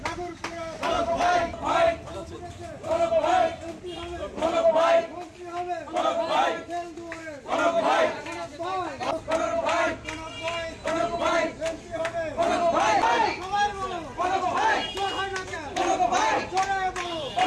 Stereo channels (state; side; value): identical; both; correlation 1.00